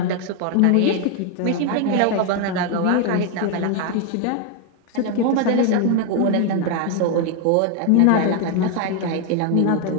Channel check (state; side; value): different; both; correlation 0.01